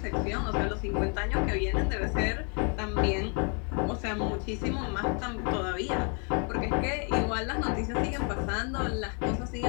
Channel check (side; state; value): right; quieter; 38.6 dB